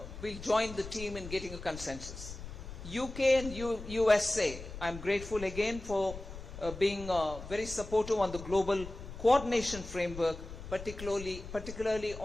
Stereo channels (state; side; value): noise; left; rumble, 11 dB below the sound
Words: we'll join the team in getting a consensus. UK and USA, I'm grateful again for being very supportive on the global coordination framework, particularly